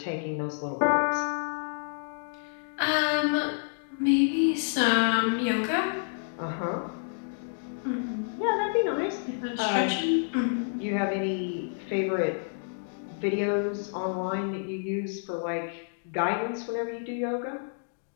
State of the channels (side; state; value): right; silent; digital silence